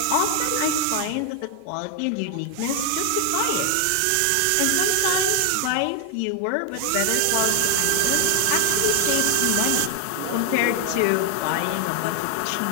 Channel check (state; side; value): different; both; correlation 0.00